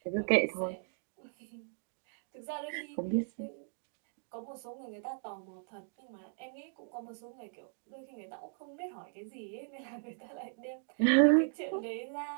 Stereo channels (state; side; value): silent; left; digital silence